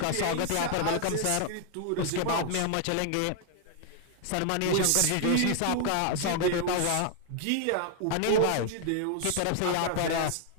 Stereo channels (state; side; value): different; both; correlation 0.00